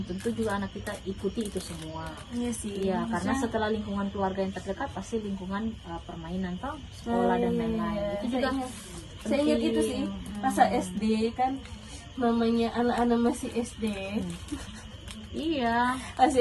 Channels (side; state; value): both; identical; correlation 1.00